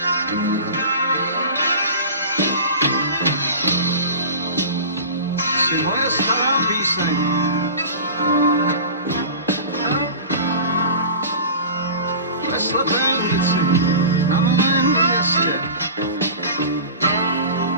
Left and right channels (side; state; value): both; inverted; correlation -0.36